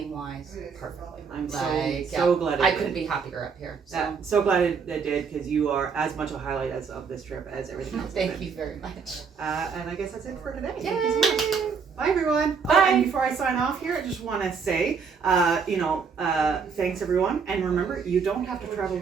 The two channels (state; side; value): quieter; left; 5.8 dB